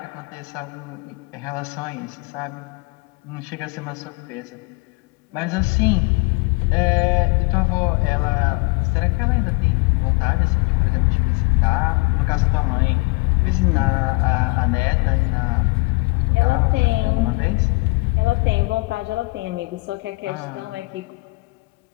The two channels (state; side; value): quieter; right; 27.3 dB